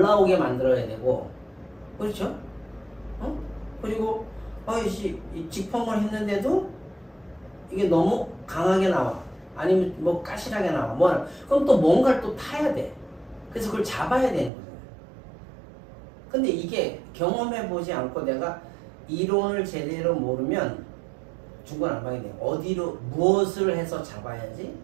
나오게 만들어야 되고. 그렇죠? 그리고 이 직펌을 했는데도 이게 너무 강하게 나와. 아니면 뭐 까실하게 나와. 그럼 또 뭔가를 또 타야 돼. 그래서 그걸 잡아야 되는 거잖아요. 근데 이게 경험해보지 않고 내가 이론을 제대로 모르면 중구난방이 돼요. 어디로 무엇을 해서 잡아야지,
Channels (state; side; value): drops out; left; at 14.5 s